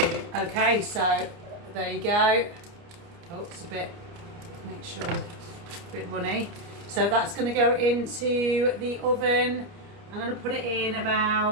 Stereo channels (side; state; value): left; late; 29 ms